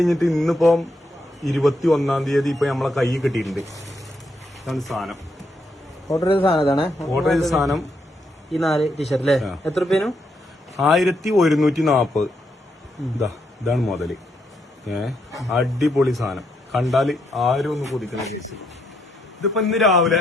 ഇന്നിപ്പോ 21-ാം തീയതി ഇപ്പൊ നമ്മളെ കൈ കിട്ടിയിട്ടുണ്ട്. ഇതാണ് സാധനം. ഓർഡർ ചെയ്ത സാധനം. ഓർഡർ ചെയ്ത സാധനം ഈ 4 ടീഷർട്ട് അല്ലേ? എത്ര രൂപേനും? 1140. ഇതാണ് മുതല്. അടിപൊളി സാധനം. കണ്ടാല് ആരും ഒന്ന് കൊതിക്കുന്ന കേസ്. ഇതിപ്പോ ഇന്ന് രാവിലെ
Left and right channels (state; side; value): normal; both; correlation 0.77